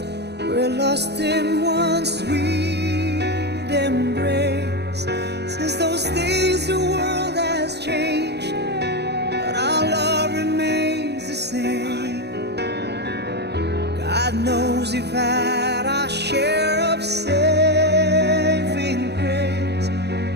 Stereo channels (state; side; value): late; left; 0.49 ms